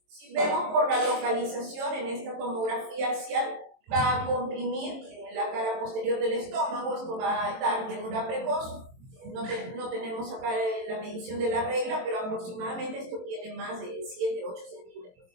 si vemos por la localización en esta tomografía axial, va a comprimir la cara posterior del estómago, esto va a dar llenura precoz. No tenemos acá la medición de la regla, pero aproximadamente esto tiene más de 7-8 centímetros.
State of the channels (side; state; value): left; late; 22 ms